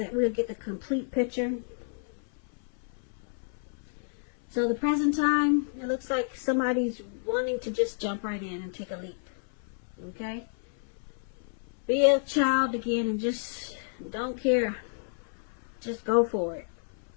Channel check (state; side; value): silent; right; 58 dB below the other